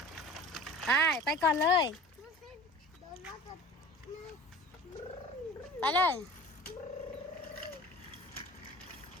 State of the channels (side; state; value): both; normal; correlation 0.41